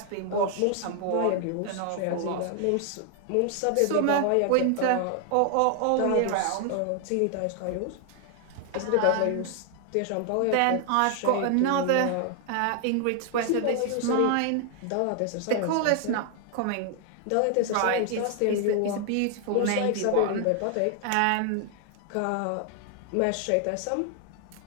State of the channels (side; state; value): both; different; correlation 0.00